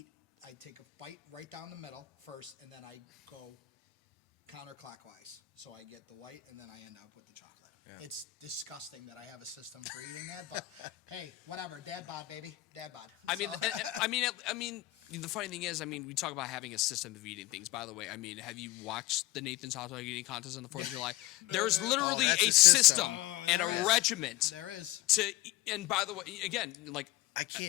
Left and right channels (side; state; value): right; quieter; 17.5 dB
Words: take a bite right down the middle first, and then I go counterclockwise. So I get the white and then I end up with the chocolate. Yeah. It's disgusting that I have a system for eating that, but hey, whatever. Dad bod, baby. Dad bod. I mean, the funny thing is, we talk about having a system of eating things. By the way, have you watched the Nathan's Hot Dog Eating Contest on the 4th of July? There's literally a system and a regiment. There is. And by the way, again, I